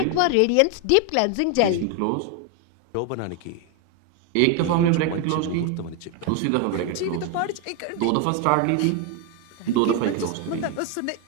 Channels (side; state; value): both; different; correlation 0.01